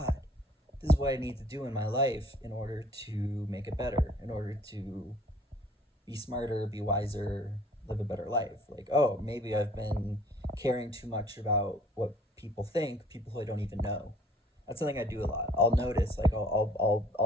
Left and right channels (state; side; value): normal; both; correlation 0.54